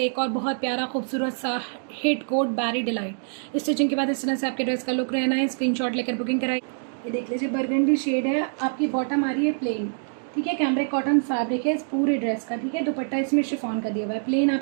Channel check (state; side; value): silent; left; digital silence